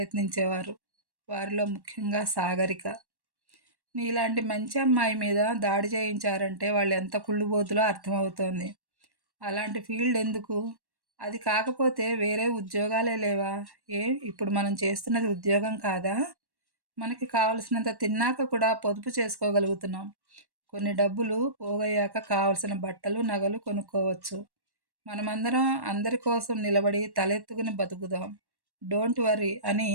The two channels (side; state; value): left; late; 1.1 ms